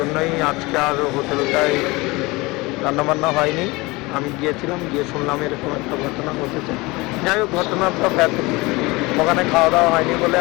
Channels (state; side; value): quieter; right; 23.0 dB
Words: আজকে আর হোটেলটায় রান্নাবান্না হয়নি। আমি গিয়েছিলাম, গিয়ে শুনলাম এরকম একটা ঘটনা ঘটেছে। যাই হোক, ঘটনাটা ব্যাপক, ওখানে খাওয়া দাওয়া হয়নি বলে